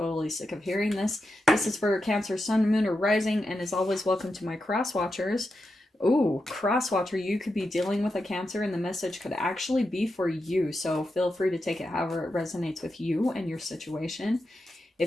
sick of hearing this. This is for Cancer, Sun, Moon, or Rising, and as always, welcome to my cross watchers. Ooh, cross watcher, you could be dealing with a Cancer, and the message could actually be for you, so feel free to take it however it resonates with you and your situation.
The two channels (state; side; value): normal; both; correlation 0.88